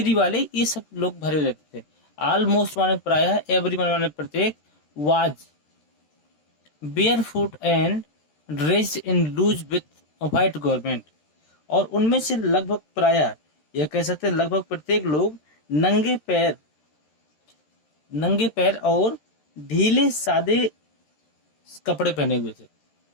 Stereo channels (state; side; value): late; right; 13 ms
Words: वाले, ये सब लोग भरे रहते थे। ऑलमोस्ट माने प्रायः, एवरी माने प्रत्येक, was barefoot and dressed in loose with white garment, और उनमें से लगभग प्रायः, यह कह सकते हैं लगभग प्रत्येक लोग नंगे पैर और ढीले सादे कपड़े पहने हुए थे।